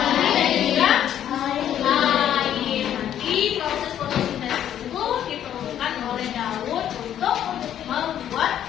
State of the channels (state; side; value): quieter; right; 10.5 dB